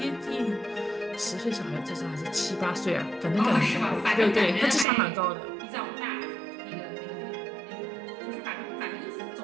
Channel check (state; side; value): drops out; left; at 4.9 s